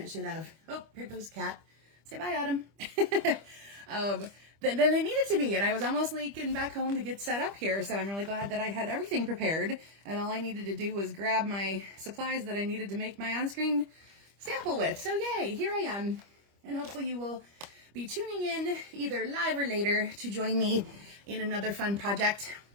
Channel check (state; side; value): late; left; 25 ms